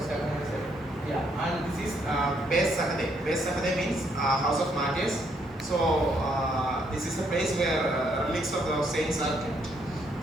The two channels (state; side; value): normal; both; correlation 0.72